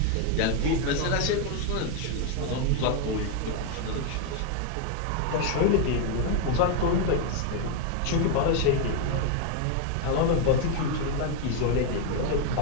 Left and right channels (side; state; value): both; different; correlation 0.01